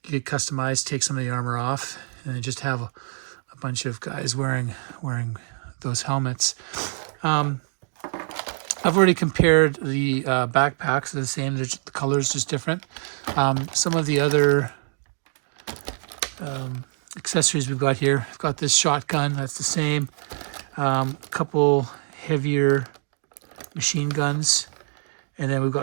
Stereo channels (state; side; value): silent; left; 62 dB below the other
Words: could customize, take some of the armor off, and then just have a bunch of guys wearing those helmets. I've already compared the backpacks. They're the same. The color's just different. Some of the other accessories we've got here. We've got this shotgun. That's the same. A couple heavier machine guns. And then we've